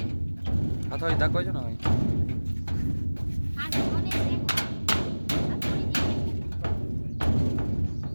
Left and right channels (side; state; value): both; inverted; correlation -1.00